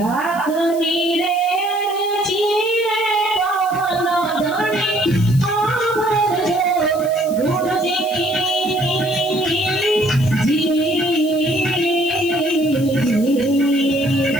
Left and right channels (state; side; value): noise; left; hiss, 17 dB below the sound